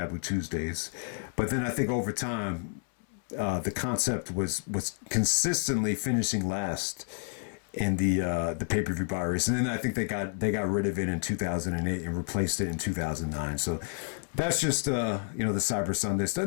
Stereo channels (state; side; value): silent; right; 58 dB below the other